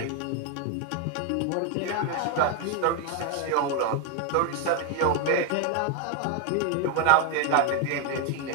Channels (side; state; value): both; different; correlation 0.01